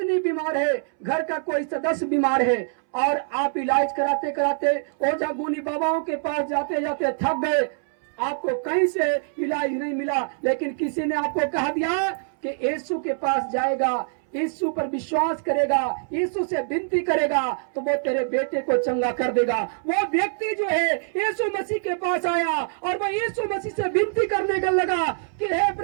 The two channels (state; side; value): silent; left; 62 dB below the other